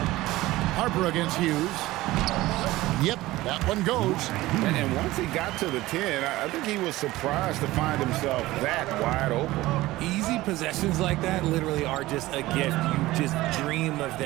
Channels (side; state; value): left; quieter; 17.8 dB